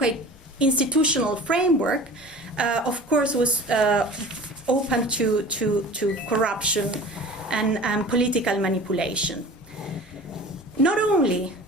institutional framework, of course, was open to corruption and political manipulation. Not only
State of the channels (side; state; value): both; normal; correlation 0.40